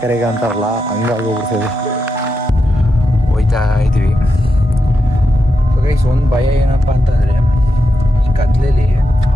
ಅಂತಾರಲ್ಲ ಹಂಗಾಗೋಗ್ಬಿಡ್ತದೆ. ಹೋಯ್ತಾ ಇದ್ದೀವಿ. ಸೊ ಗೈಸ್ ಒಂದು ಭಯ ಏನಪ್ಪ ಅಂತಂದರೆ ಈ ಕತ್ಲೆಯಲ್ಲಿ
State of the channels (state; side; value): normal; both; correlation 0.87